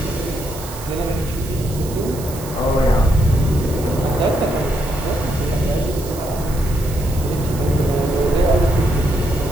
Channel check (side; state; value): right; noise; hiss, 15 dB below the sound